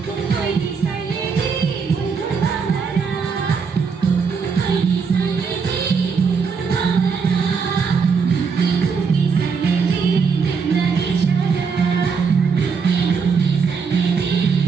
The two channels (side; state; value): left; quieter; 5.6 dB